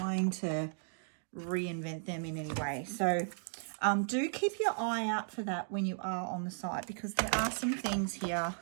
to reinvent them in any way. So do keep your eye out for that when you are on the site, because there are some things here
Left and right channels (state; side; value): silent; left; digital silence